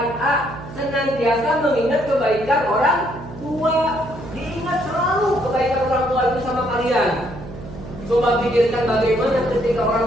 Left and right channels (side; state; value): right; noise; hum, 13 dB below the sound